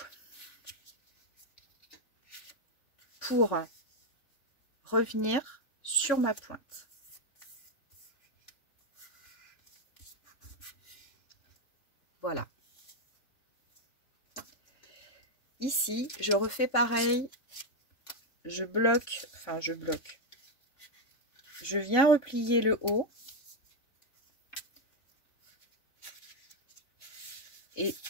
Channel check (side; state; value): right; late; 3.6 ms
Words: pour revenir sur ma pointe. Voilà. Ici, je refais pareil. Je bloque, enfin je bloque. Je viens replier le haut. Et